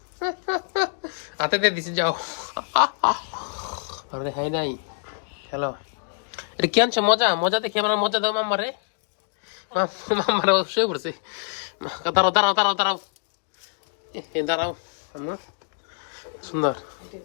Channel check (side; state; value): right; silent; digital silence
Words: হাতে দিয়ে দিছে যাও আরে হাই নাই খেলো এটা কি আনছো মজা মজা দেখি আমার মজা দাও মাম্মারে মাম্মারে শুয়ে পড়ছে দাঁড়াও দাঁড়াও দাঁড়াও দাঁড়াও দাঁড়াও আম্মা সুন্দর